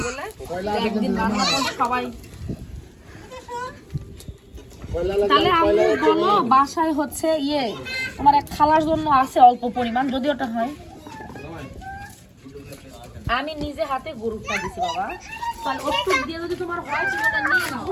বলে। একদিন রান্না করলে সবাই। তাহলে আমি বলো বাসায় হচ্ছে ইয়ে তোমার এক খালার জন্য আছে অল্প পরিমাণ, যদি ওটা হয়। আমি নিজে হাতে গরুটা দিছি বাবা, তাহলে ওষুধ দিয়ে যদি তোমার হয় তুমি ওটা নিয়ে নাও,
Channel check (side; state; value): both; identical; correlation 1.00